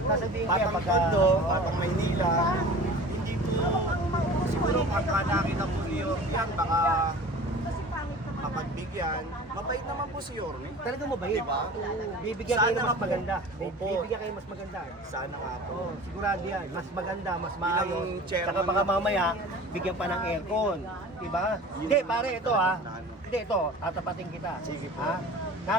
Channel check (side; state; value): both; normal; correlation 0.40